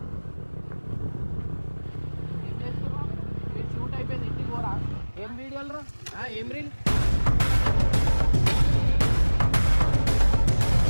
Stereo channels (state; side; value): inverted; both; correlation -1.00